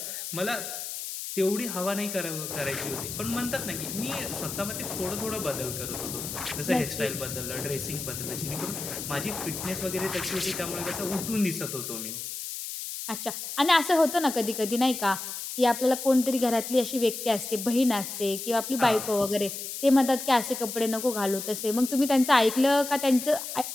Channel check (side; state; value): left; noise; hiss, 7 dB below the sound